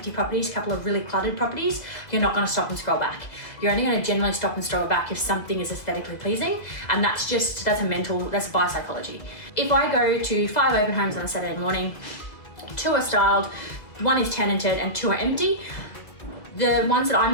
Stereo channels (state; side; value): late; right; 1.8 ms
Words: properties, a couple of really cluttered properties, you're not going to stop and scroll back. You're only going to generally stop and scroll back if something is aesthetically pleasing, and that's buyer psychology. If I go to 5 open homes on a Saturday morning, 2 are styled, 1 is tenanted and 2 are empty, the ones that I'm